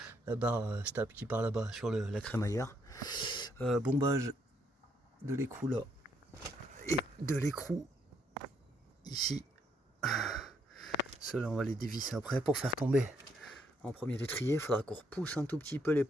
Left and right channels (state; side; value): normal; both; correlation 0.73